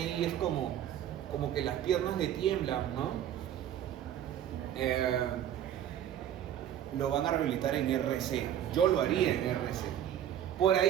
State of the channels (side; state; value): left; quieter; 10.7 dB